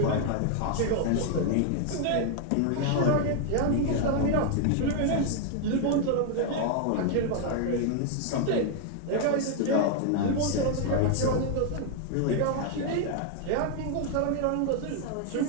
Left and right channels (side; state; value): both; different; correlation 0.00